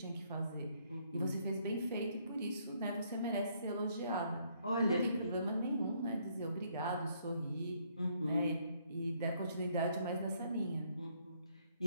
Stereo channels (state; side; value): inverted; both; correlation -0.70